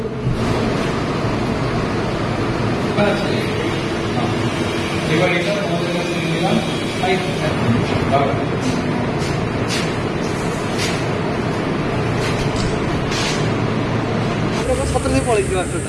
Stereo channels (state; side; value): identical; both; correlation 1.00